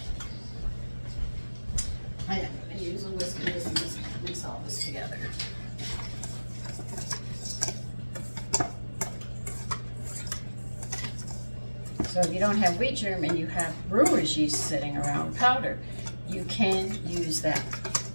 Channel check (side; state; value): both; inverted; correlation -1.00